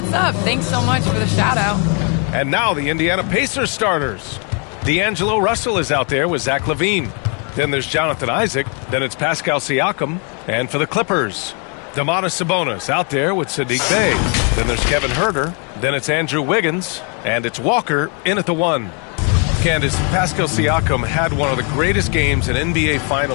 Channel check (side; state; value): right; quieter; 37.5 dB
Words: up? Thanks so much for the shout-out. And now the Indiana Pacers starters. D'Angelo Russell is out there with Zach LaVine. Then there's Jonathan Isaac. Then it's Pascal Siakam. And for the Clippers, Domantas Sabonis out there with Saddiq Bey. Then there's Kevin Huerter. Then it's Andrew Wiggins. And it's Walker in at the 1. Candace, Pascal Siakam had one of the greatest games in NBA